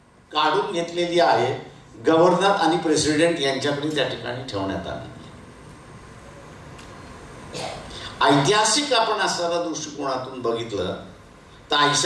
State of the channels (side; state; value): both; identical; correlation 1.00